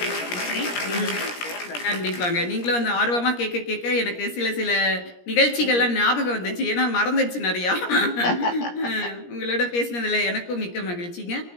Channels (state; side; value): late; right; 17 ms